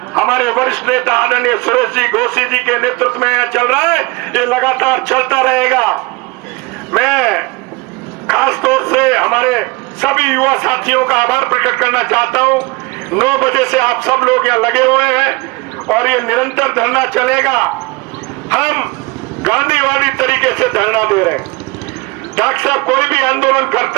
हमारे वरिष्ठ नेता आदरणीय सुरेश जी घोसी जी के नेतृत्व में चल रहा है, ये लगातार चलता रहेगा। मैं खास तौर से हमारे सभी युवा साथियों का आभार प्रकट करना चाहता हूं। 9 बजे से आप सब लोग यहाँ लगे हुए हैं और ये निरंतर धरना चलेगा। हम गांधीवादी तरीके से धरना दे रहे हैं। डॉक्टर साहब कोई भी आंदोलन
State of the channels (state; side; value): quieter; left; 25.1 dB